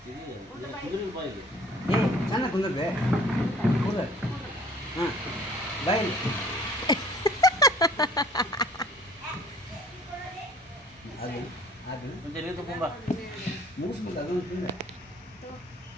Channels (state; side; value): normal; both; correlation 0.52